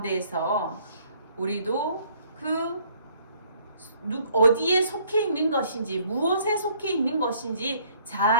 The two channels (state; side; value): inverted; both; correlation -0.62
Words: 우리도 어디에 속해 있는 것인지, 무엇에 속해 있는 것인지